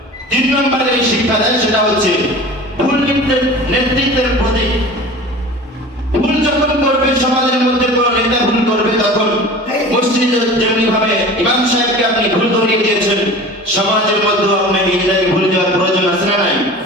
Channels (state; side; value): normal; both; correlation 0.38